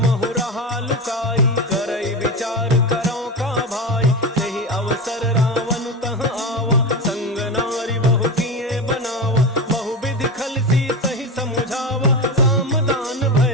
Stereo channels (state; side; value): normal; both; correlation 0.22